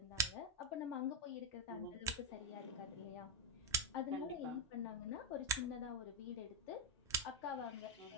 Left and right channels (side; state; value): both; normal; correlation 0.02